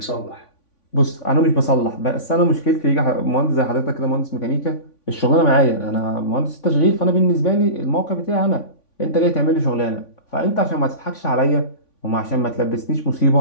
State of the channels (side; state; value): right; late; 3.5 ms